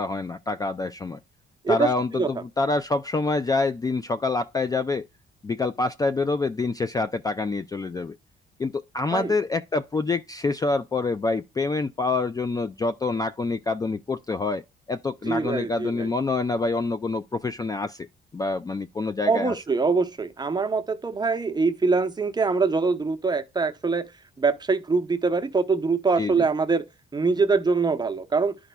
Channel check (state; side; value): normal; both; correlation 0.65